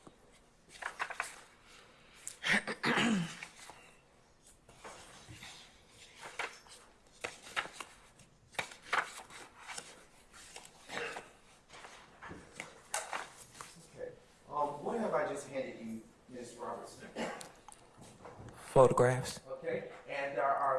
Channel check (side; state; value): both; identical; correlation 1.00